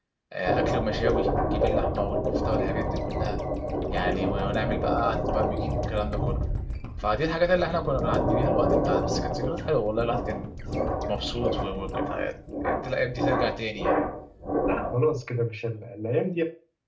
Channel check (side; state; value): both; identical; correlation 1.00